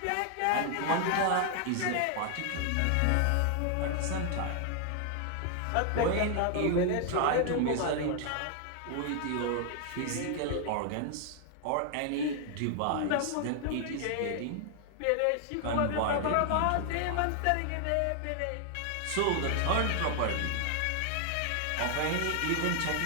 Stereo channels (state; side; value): different; both; correlation 0.00